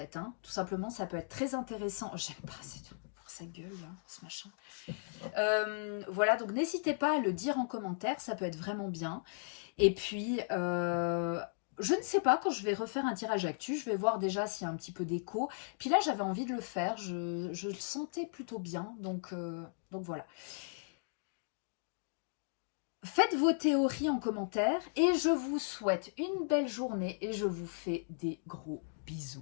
Hein. Tout simplement, ça peut être très intéressant. J'aime pas, c'est tout. sa gueule, hein, ce machin. Voilà, donc n'hésitez pas à le dire en commentaire, ça peut être vraiment bien. Et puis, je ne sais pas, quand je vais refaire un tirage actu, je vais voir déjà s'il y a un petit peu d'écho. Puis là, j'avais envie de le faire, je le sentais plutôt bien, donc voilà. Faites vos théories en commentaire et je vous souhaite une belle journée et je vous fais des gros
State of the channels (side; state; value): right; silent; digital silence